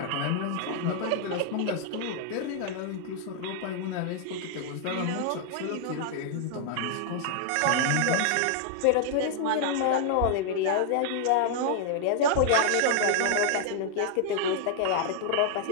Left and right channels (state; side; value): different; both; correlation -0.01